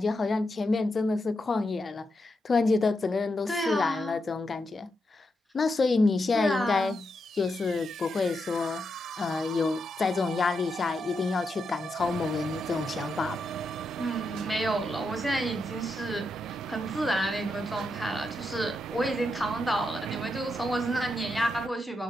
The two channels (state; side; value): normal; both; correlation 0.84